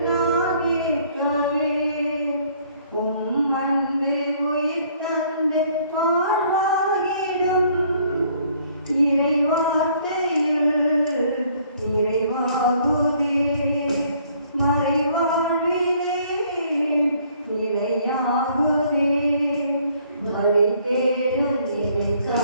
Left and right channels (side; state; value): both; inverted; correlation -0.62